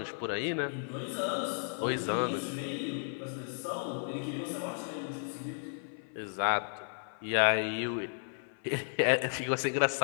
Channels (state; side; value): silent; right; 55 dB below the other